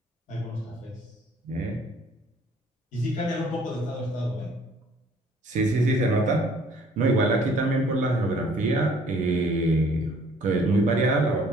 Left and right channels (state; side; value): normal; both; correlation 0.58